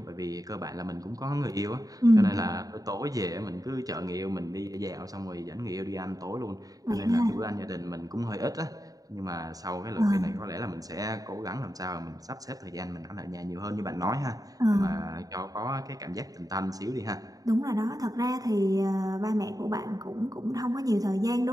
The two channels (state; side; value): late; left; 0.18 ms